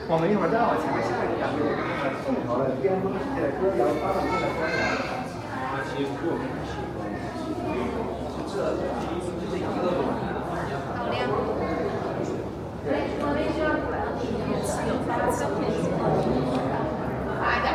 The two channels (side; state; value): both; identical; correlation 1.00